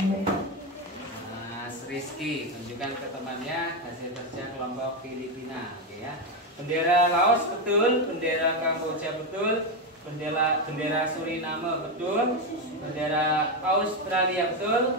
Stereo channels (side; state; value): both; normal; correlation 0.09